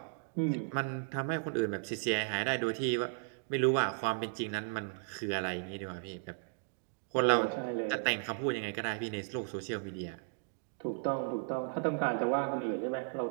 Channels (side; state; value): left; silent; digital silence